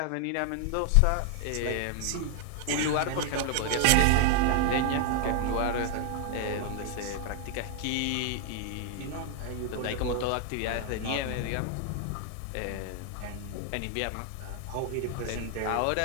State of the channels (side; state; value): both; different; correlation 0.00